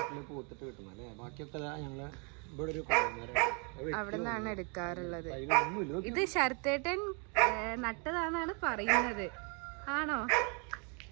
പൂത്തിട്ട് കിട്ടുന്നത് അല്ലേ? ബാക്കിയൊക്കെ ഞങ്ങള് ഇവിടെ ഒരു അവിടെ നിന്നാണ് എടുക്കാറുള്ളത്. ഇത് ശരത്തേട്ടൻ നട്ടതാണെന്നാണ് പറയുന്നത്. ആണോ?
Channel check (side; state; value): left; quieter; 36.0 dB